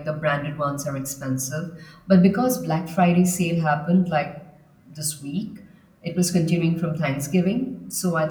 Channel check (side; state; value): both; identical; correlation 1.00